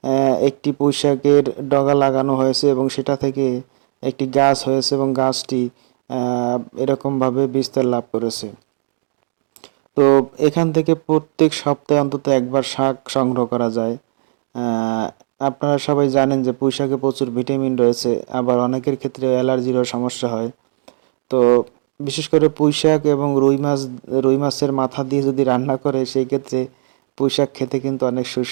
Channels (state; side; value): silent; left; digital silence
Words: একটি পুঁইশাকের ডগা লাগানো হয়েছে এবং সেটা থেকে একটি গাছ হয়েছে এবং গাছটি এরকমভাবে বিস্তার লাভ করেছে। তো এখান থেকে প্রত্যেক সপ্তাহে অন্তত একবার শাক সংগ্রহ করা যায়। আহ, আপনারা সবাই জানেন যে পুঁইশাকে প্রচুর ভিটামিন রয়েছে, আবার অনেকের ক্ষেত্রে অ্যালার্জিরও সমস্যা হয়। তো বিশেষ করে পুঁইশাক এবং রুই মাছের মাথা দিয়ে যদি রান্না করে সেই ক্ষেত্রে পুঁইশাক খেতে কিন্তু অনেক